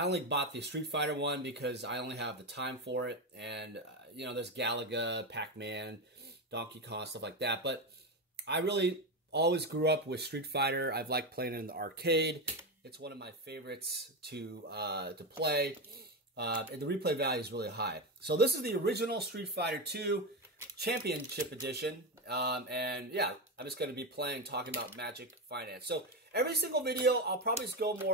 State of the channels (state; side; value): normal; both; correlation 0.13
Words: only bought the Street Fighter one because I only have the time for it, and there's Galaga, Pac-Man, Donkey Kong, stuff like that. But I really always grew up with Street Fighter. I've liked playing it in the arcade. It's one of my favorites to play, and the replay value is really high. So this is the original Street Fighter 2 Championship Edition, and yeah, I'm just going to be talking about Magic Finance. So every single video, I'll probably just go